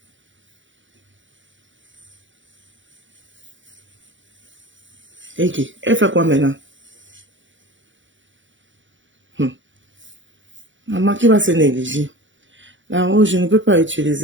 Ok. Elle fait quoi maintenant? Maman qui va se négliger. Là-haut, je ne peux pas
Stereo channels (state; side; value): late; left; 0.55 ms